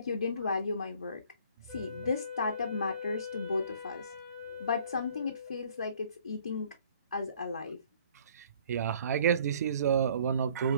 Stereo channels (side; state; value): both; inverted; correlation -0.57